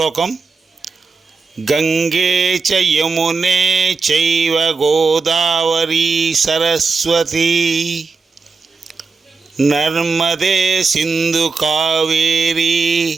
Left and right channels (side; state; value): left; quieter; 4.5 dB